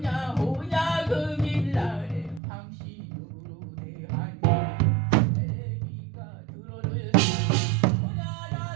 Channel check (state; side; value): drops out; left; at 2.4 s